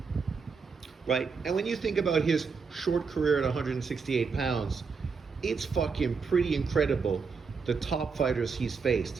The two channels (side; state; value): left; quieter; 5.3 dB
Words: right? And when you think about his short career at 168 pounds, it's fucking pretty incredible, the top fighters he's